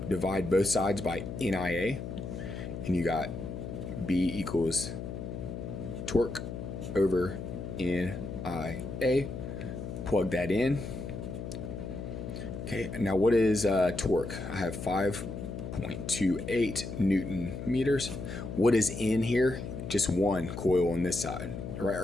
divide both sides by NIA, and you got B equals torque over NIA. Plug that in. Okay, now what is torque? I have 5.28 Newton meters. What is in here? Just one coil on this side, right?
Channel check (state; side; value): noise; left; hum, 7 dB below the sound